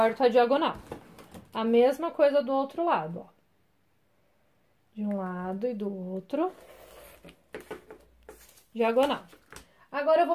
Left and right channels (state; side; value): identical; both; correlation 1.00